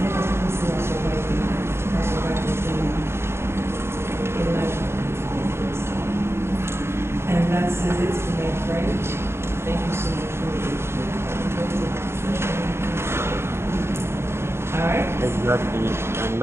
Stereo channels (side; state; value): left; late; 0.12 ms